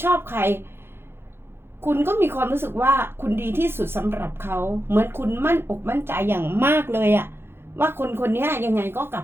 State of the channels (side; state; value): left; late; 0.11 ms